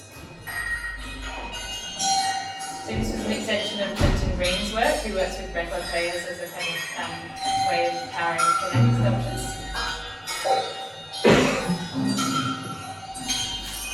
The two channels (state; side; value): identical; both; correlation 1.00